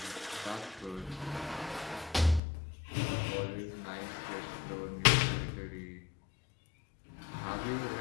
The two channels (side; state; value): right; drops out; at 2.4 s